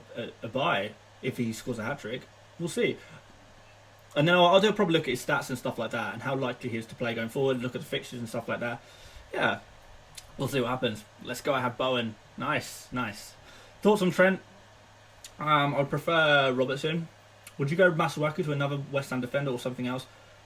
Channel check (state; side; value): identical; both; correlation 1.00